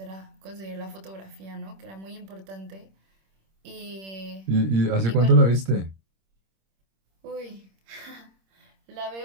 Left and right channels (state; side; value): late; left; 26 ms